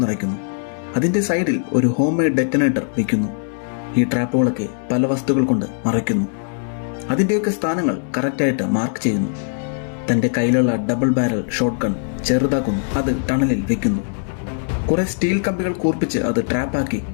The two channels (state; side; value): silent; right; digital silence